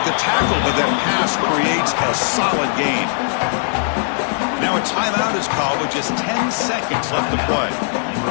the tackle, but that pass creates a solid gain. Now a timeout is called with just 10 seconds left to play.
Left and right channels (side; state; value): right; silent; 66 dB below the other